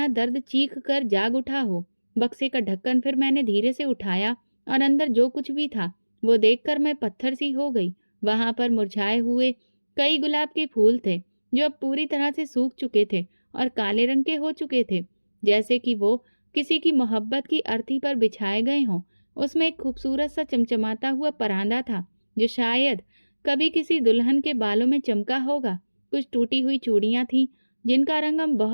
दर्द चीख कर जाग उठा हो। बक्से का ढक्कन फिर मैंने धीरे से उठाया और अंदर जो कुछ भी था वो देखकर मैं पत्थर सी हो गई। वहां पर मुरझाए हुए कई गुलाब के फूल थे जो अब पूरी तरह से सूख चुके थे और काले रंग के हो चुके थे, जैसे कि वो किसी की मोहब्बत की अर्थी पर बिछाए गए हों। उसमें एक खूबसूरत सा चमचमाता हुआ परांदा था जो शायद कभी किसी दुल्हन के बालों में चमका होगा। कुछ टूटी हुई चूड़ियां थीं जिनका रंग अब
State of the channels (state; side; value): inverted; both; correlation -1.00